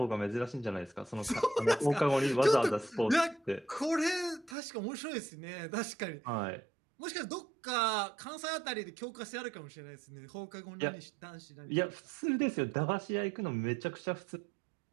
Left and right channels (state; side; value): drops out; left; at 4.5 s